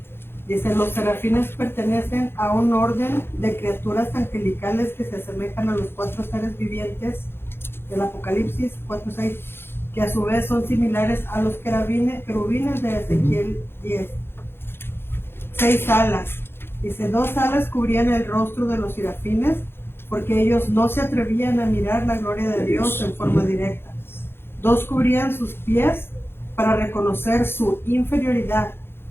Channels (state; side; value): late; right; 0.11 ms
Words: Dice, los serafines pertenecen a un orden de criaturas angelicales que se asemejan a los 4 seres vivientes del Apocalipsis 4:6, que a su vez son similares a los querubines de Ezequiel 10. 6 alas. Dice, 2 alas cubrían el rostro de los serafines porque ellos no se atrevían a mirar la gloria de Dios en forma directa. 2 cubrían sus pies para reconocer su inferioridad,